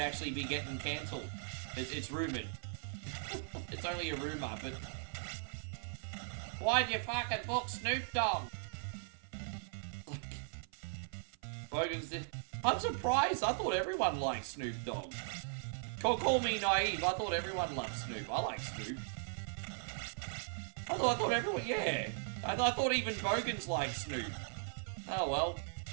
be getting cancelled. It's rumoured. It's only a rumour, but why'd you fucking book Snoop Dogg? Bogans did. I'm surprised. I thought everyone liked Snoop Dogg. Call me naive. I thought everyone loved Snoop. I like Snoop. I thought everyone, yeah. I thought even Bogans liked Snoop. Oh well.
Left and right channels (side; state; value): left; silent; 52 dB below the other